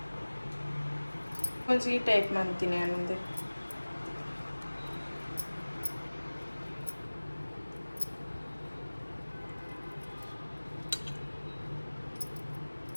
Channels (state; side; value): inverted; both; correlation -1.00